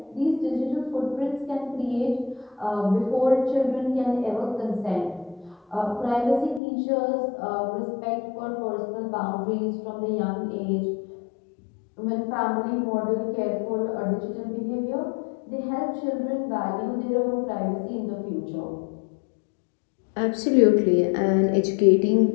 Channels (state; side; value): drops out; right; at 6.6 s